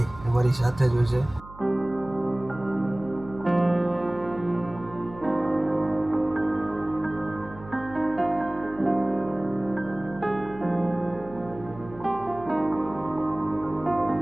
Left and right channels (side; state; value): right; noise; hum, 18 dB below the sound